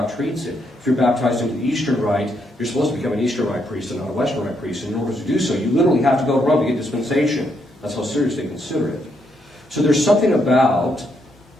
treats it. If you're baptized into the Eastern Rite, you're supposed to become an Eastern Rite priest and not a Western Rite priest, and in order to do so, you literally have to go to Rome to get dispensation. That's how serious they consider it. So there's something about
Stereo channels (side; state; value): both; normal; correlation 0.76